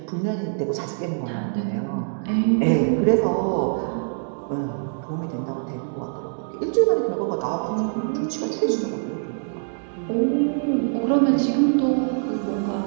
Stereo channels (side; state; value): left; silent; digital silence